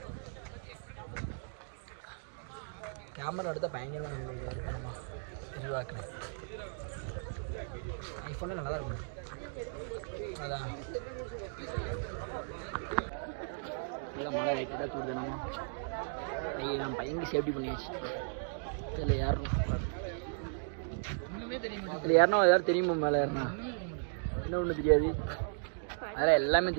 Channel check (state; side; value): silent; left; digital silence